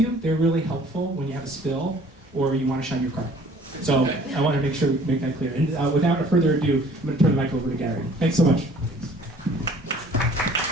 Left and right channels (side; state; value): both; normal; correlation 0.53